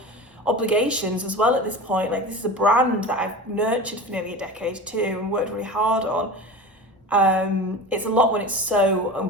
obligations as well at this point. Like, this is a brand that I've nurtured for nearly a decade too and worked really hard on. It's a lot when it's so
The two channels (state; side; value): normal; both; correlation 0.32